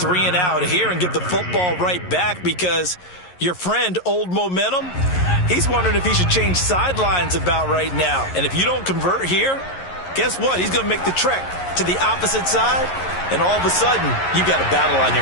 and out here and get the football right back, because your friend, Old Momentum, he's wondering if he should change sidelines about right now. And if you don't convert here, guess what? He's going to make the trek to the opposite side, and all of a sudden, you've got a battle on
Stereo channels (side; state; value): right; late; 11 ms